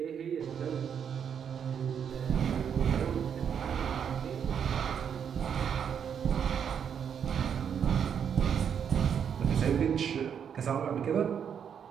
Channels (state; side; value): quieter; left; 7.9 dB